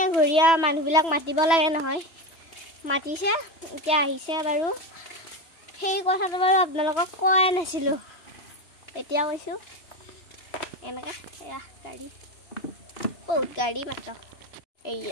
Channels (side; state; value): right; late; 3.0 ms